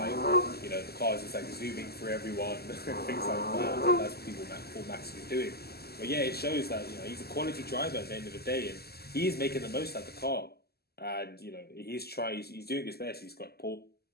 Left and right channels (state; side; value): late; right; 0.46 ms